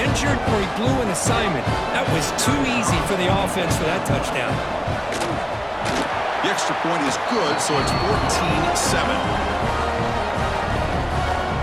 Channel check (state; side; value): identical; both; correlation 1.00